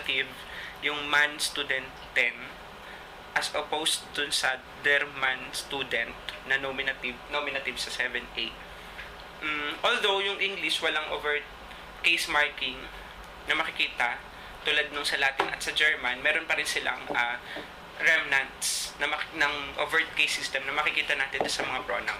yung man student 10, as opposed dun sa der man student na nominative sa 7A. Although yung English walang overt case marking na makikita, tulad nung sa Latin at sa German, meron pa rin silang remnants ng overt case system na makikita natin sa mga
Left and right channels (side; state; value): both; identical; correlation 1.00